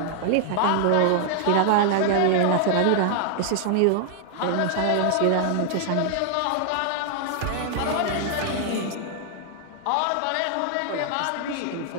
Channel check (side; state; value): both; different; correlation 0.00